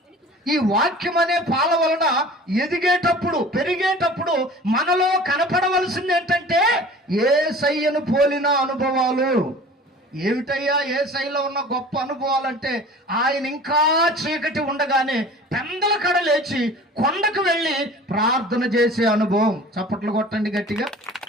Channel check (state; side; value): normal; both; correlation 0.43